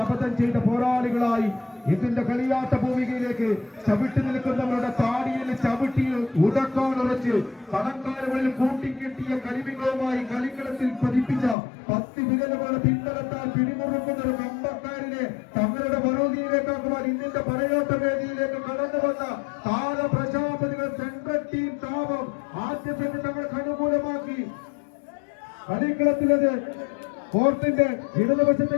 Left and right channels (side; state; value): right; drops out; at 11.6 s